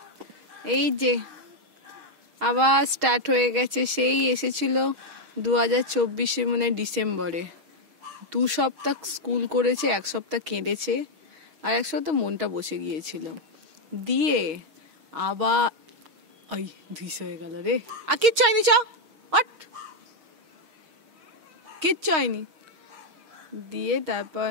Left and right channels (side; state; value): left; late; 6.3 ms